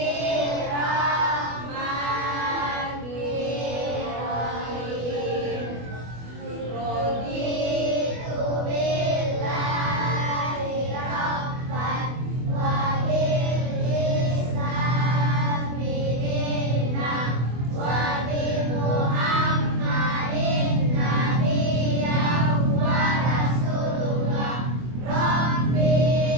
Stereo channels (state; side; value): late; left; 24 ms